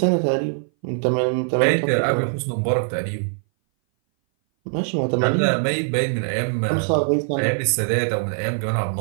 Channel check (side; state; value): left; silent; 59 dB below the other